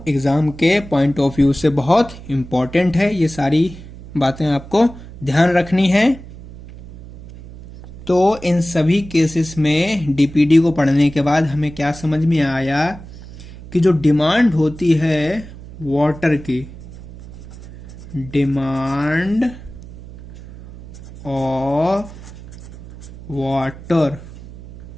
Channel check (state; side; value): noise; right; hum, 16 dB below the sound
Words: एग्जाम के पॉइंट ऑफ व्यू से बहुत इंपॉर्टेंट है। ये सारी बातें आपको ध्यान रखनी है। तो इन सभी केसेस में डीपीडी को पढ़ने के बाद हमें क्या समझ में आया कि जो डिमांड होती है वाटर की, डिमांड ऑफ वाटर,